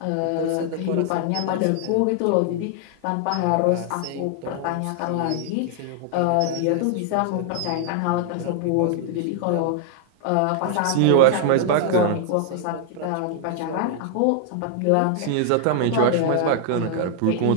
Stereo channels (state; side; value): different; both; correlation 0.00